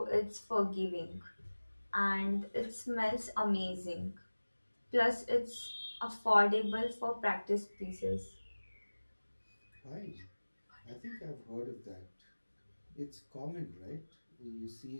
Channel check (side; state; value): both; inverted; correlation -1.00